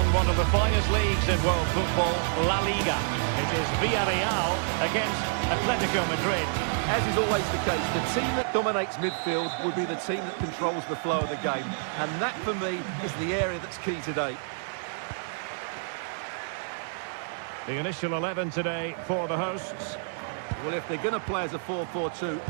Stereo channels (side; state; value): left; silent; digital silence